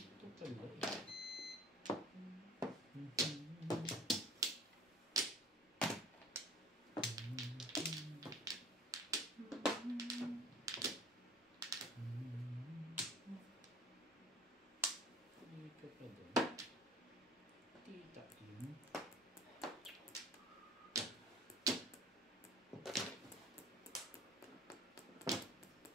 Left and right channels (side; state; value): both; normal; correlation 0.45